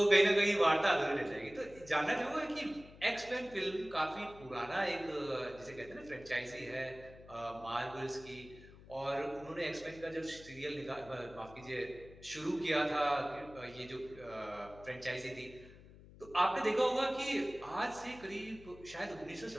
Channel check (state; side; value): noise; left; hum, 20 dB below the sound